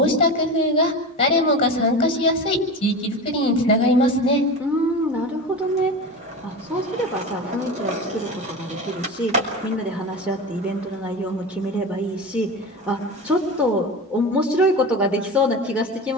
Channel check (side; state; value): both; normal; correlation 0.27